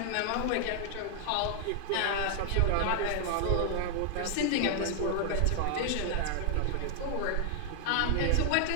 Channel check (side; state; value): both; different; correlation 0.00